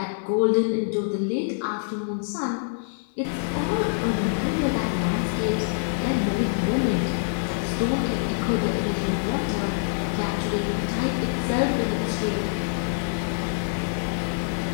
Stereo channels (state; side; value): silent; right; digital silence